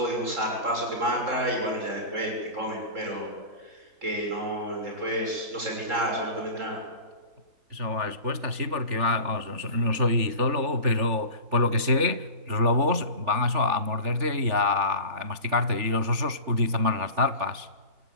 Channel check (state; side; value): late; left; 3.4 ms